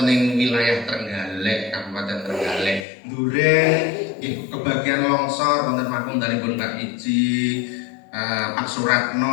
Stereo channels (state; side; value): drops out; right; at 2.9 s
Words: ing wilayah Trenggalek Kabupaten Trenggalek Duren nggih kebagian longsor wonten makundalipun Pak Iji Pak